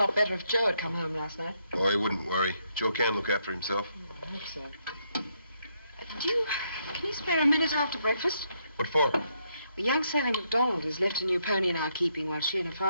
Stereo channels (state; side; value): inverted; both; correlation -0.76